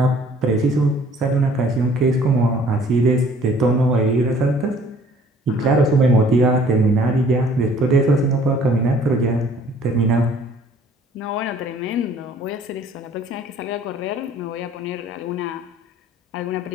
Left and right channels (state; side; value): normal; both; correlation 0.55